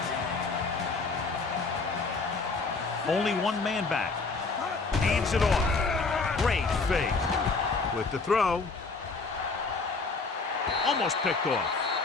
Only one man back. Hands it off. Great fake. With the throw. Almost picked off.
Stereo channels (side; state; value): right; quieter; 4.1 dB